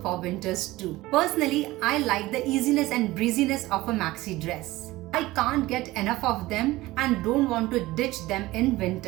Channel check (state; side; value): quieter; left; 18.5 dB